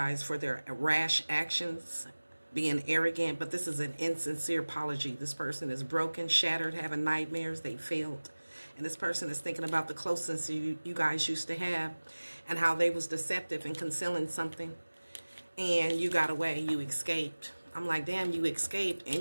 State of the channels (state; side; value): inverted; both; correlation -1.00